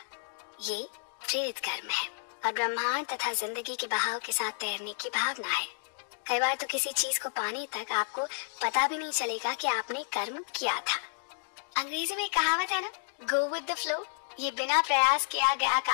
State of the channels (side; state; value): right; silent; digital silence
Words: ये प्रेरित कर्म है और ब्रह्मांड तथा जिंदगी के बहाव के साथ तैरने की भावना है। कई बार तो किसी चीज को पाने तक आपको पता भी नहीं चलेगा कि आपने कर्म किया था। अंग्रेजी में कहावत है ना, गो विद द फ्लो। ये बिना प्रयास किया गया